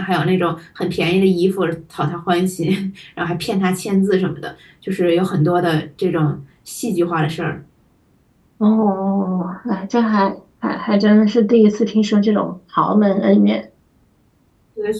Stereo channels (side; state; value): both; identical; correlation 1.00